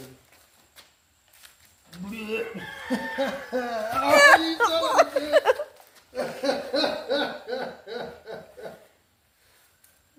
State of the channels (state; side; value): identical; both; correlation 1.00